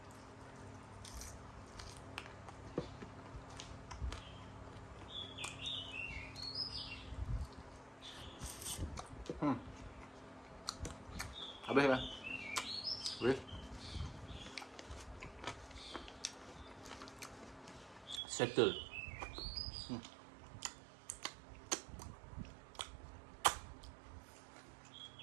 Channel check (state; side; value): drops out; left; at 18.2 s